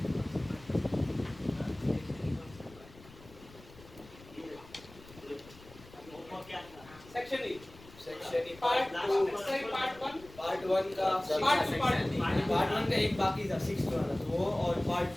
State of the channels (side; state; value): left; noise; rumble, 21 dB below the sound